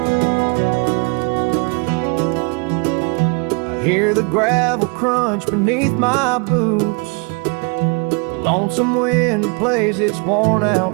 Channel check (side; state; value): left; quieter; 32.9 dB